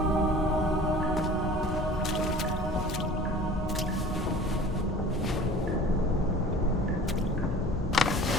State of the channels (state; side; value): normal; both; correlation 0.43